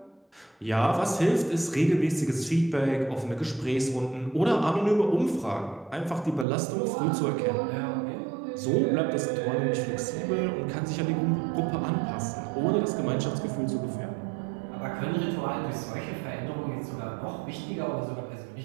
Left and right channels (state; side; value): drops out; left; at 6.5 s